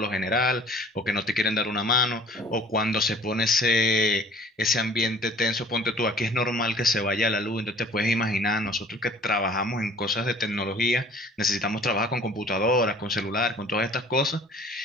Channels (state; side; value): normal; both; correlation 0.51